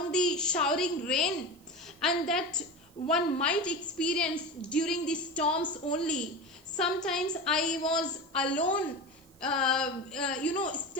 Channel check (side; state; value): right; noise; hiss, 30 dB below the sound